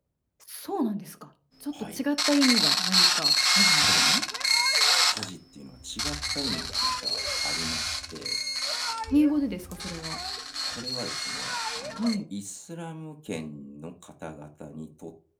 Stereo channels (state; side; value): identical; both; correlation 1.00